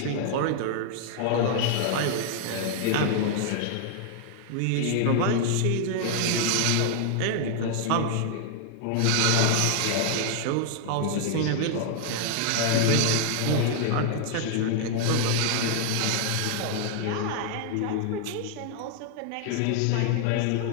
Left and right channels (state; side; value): different; both; correlation 0.00